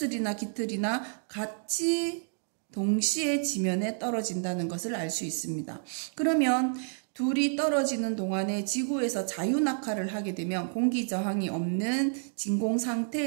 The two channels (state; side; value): silent; left; digital silence